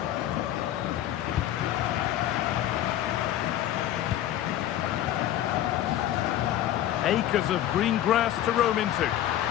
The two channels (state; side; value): quieter; right; 12.4 dB